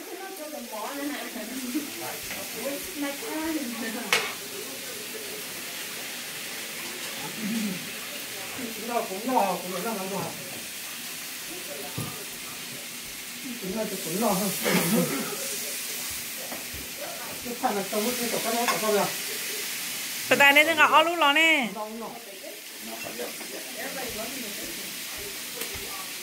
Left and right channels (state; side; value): identical; both; correlation 1.00